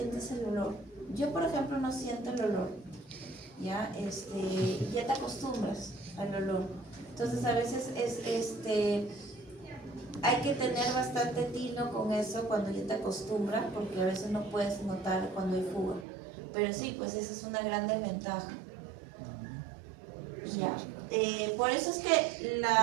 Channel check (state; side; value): drops out; left; at 16.1 s